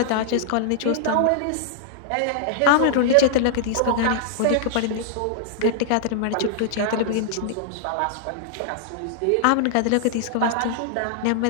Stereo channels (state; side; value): different; both; correlation -0.01